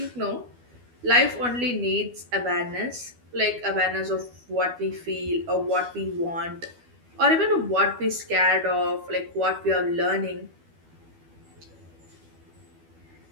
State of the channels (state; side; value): late; left; 12 ms